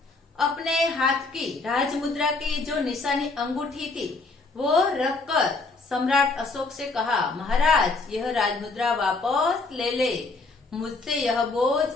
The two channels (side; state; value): right; quieter; 3.6 dB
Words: अपने हाथ की राजमुद्रा की जो निशानी अंगूठी थी वो रखकर सम्राट अशोक से कहा, महाराज, यह राजमुद्रा वापस ले ले, मुझसे यह बोझ